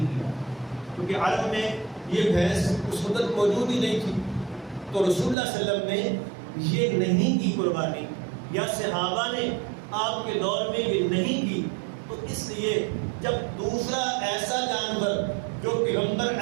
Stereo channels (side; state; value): left; drops out; at 5.4 s